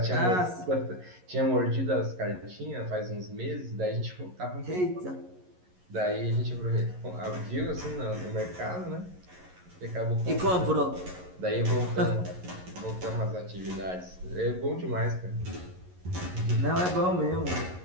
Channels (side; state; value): left; late; 11 ms